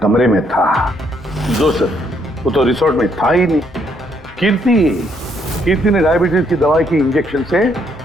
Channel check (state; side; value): normal; both; correlation 0.71